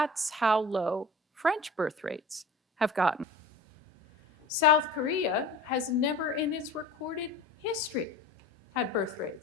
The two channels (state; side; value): normal; both; correlation 0.38